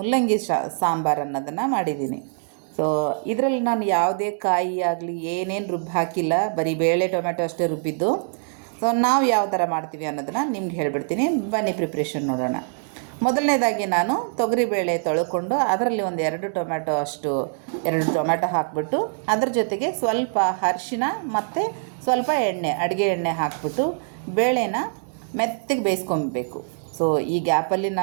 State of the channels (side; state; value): left; silent; digital silence